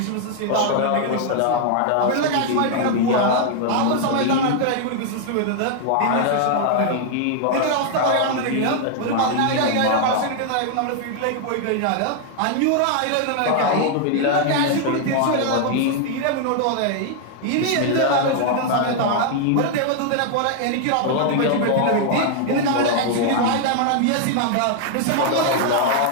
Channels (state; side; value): different; both; correlation 0.00